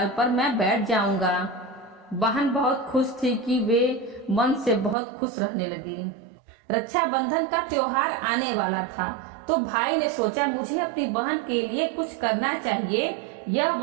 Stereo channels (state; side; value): drops out; left; at 5.0 s